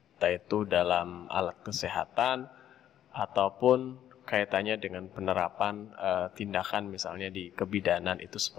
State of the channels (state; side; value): quieter; right; 11.1 dB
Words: Entah itu dalam alat kesehatan ataupun kaitannya dengan penerapan tindakan misalnya di kebidanan itu